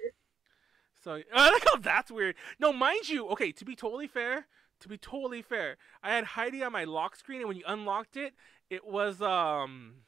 So I like how that's weird. No, mind you, okay, to be totally fair, I had Heidi on my lock screen, and when you unlocked it, it was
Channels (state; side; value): quieter; left; 6.8 dB